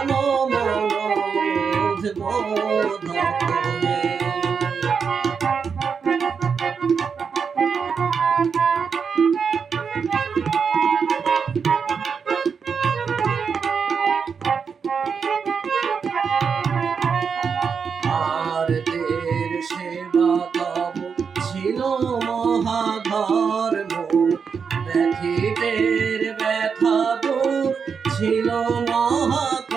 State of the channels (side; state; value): left; quieter; 6.1 dB